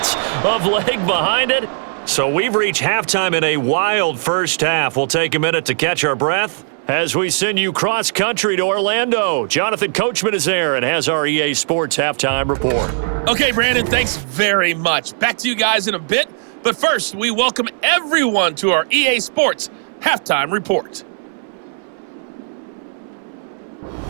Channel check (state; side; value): silent; left; 67 dB below the other